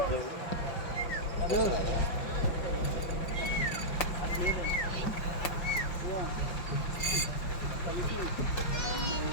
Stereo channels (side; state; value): right; late; 5.5 ms